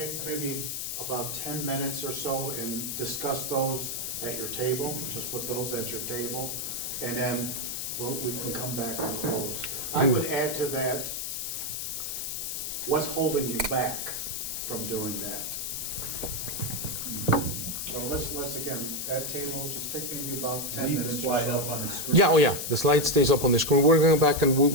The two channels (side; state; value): left; noise; hiss, 3 dB below the sound